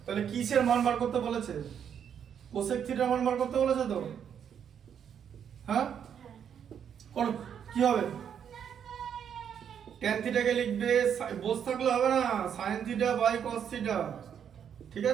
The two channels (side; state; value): left; quieter; 8.3 dB